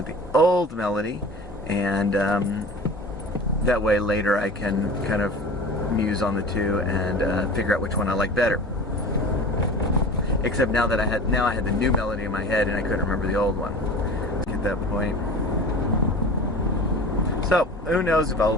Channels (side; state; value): both; normal; correlation 0.37